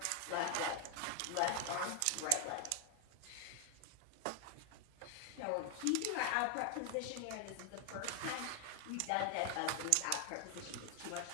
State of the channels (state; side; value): different; both; correlation 0.00